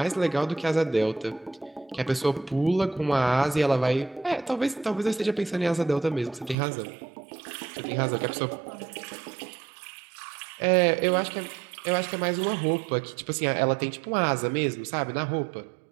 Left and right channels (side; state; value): left; drops out; at 6.6 s